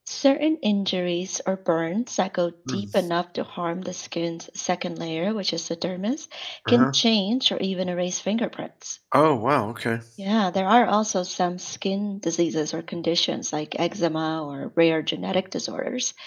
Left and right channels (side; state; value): both; identical; correlation 1.00